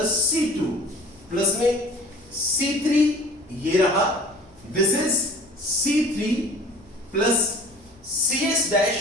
C2 plus में C3 ये रहा, this is C3 plus CS dash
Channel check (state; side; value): noise; left; rumble, 28 dB below the sound